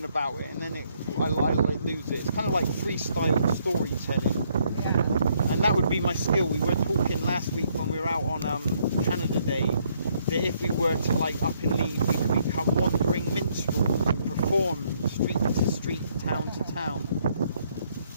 about it, and then I lose it. It's kind of like freestyle storytelling. Yeah. And that would be my skill. We were talking last week when we were out on Canada Day that if we were to like up and leave, we could become wandering minstrels and perform street to street, town to town.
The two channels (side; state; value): both; inverted; correlation -0.70